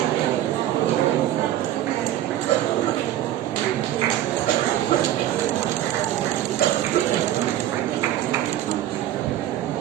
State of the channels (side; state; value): left; quieter; 12.9 dB